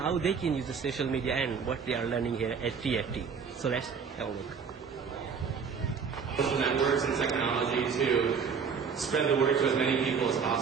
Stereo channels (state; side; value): quieter; left; 6.1 dB